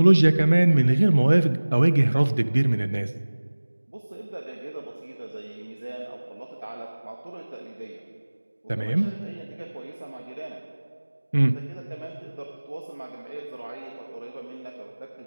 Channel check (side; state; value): both; inverted; correlation -1.00